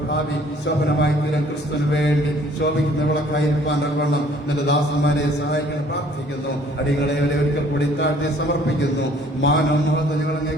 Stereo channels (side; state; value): both; normal; correlation 0.57